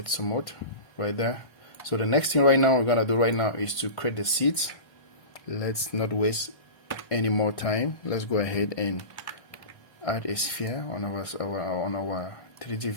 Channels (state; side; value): late; right; 1.5 ms